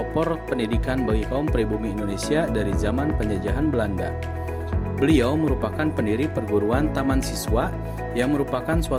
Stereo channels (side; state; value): both; identical; correlation 1.00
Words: pendidikan bagi kaum pribumi Indonesia dari zaman penjajahan Belanda. Beliau merupakan pendiri perguruan Taman Siswa yang merupakan